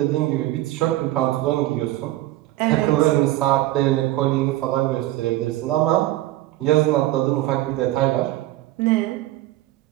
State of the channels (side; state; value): left; quieter; 16.3 dB